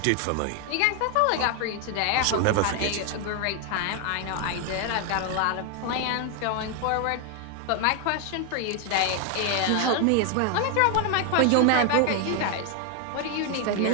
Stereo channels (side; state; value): both; different; correlation 0.00